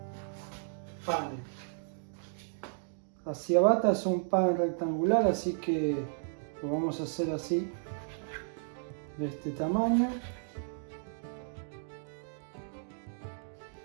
panes. La ciabatta es un pan rectangular, así que lo vamos a hacer así, de este tamaño.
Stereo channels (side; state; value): left; silent; digital silence